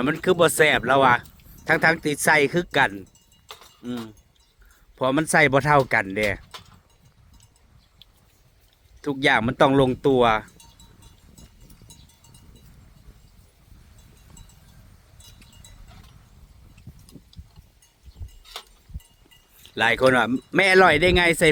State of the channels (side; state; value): both; identical; correlation 1.00